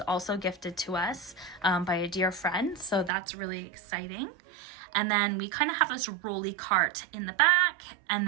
also gifted to us by a dear friend, so that's really exciting. And then we kind of have this rolly cart in the back, and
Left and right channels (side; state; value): left; drops out; at 3.1 s